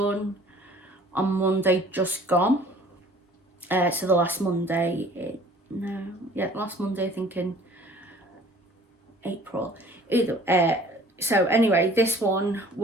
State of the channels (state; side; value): normal; both; correlation 0.51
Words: on Monday just gone. So the last Monday, last Monday, I think in April. So anyway, this one